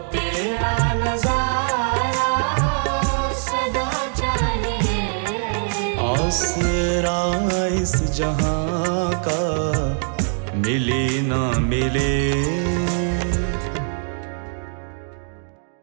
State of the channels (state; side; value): silent; left; 64 dB below the other